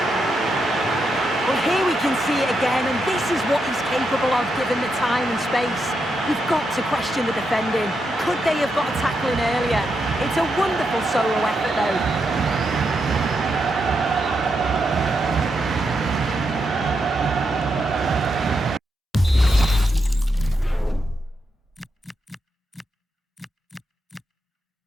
Well, here we can see it again, and this is what he's capable of given the time and space. We've got to question the defending. Could they have got a tackle in earlier? It's a wonderful solo effort, though.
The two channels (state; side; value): normal; both; correlation 0.83